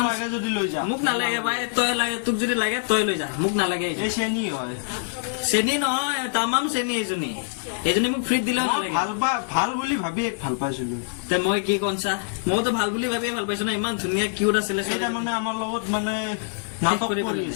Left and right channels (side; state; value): right; silent; digital silence